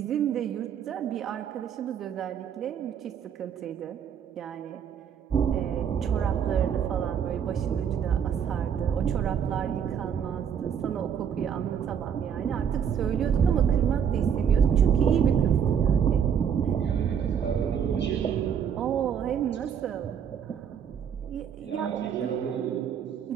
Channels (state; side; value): quieter; left; 8.0 dB